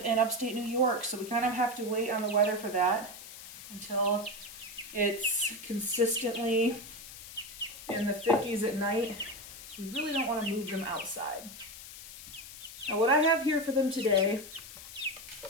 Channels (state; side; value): noise; left; hiss, 14 dB below the sound